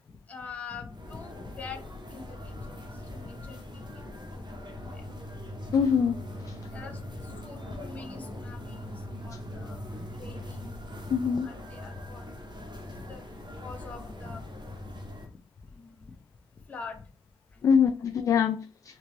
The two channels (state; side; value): quieter; right; 5.6 dB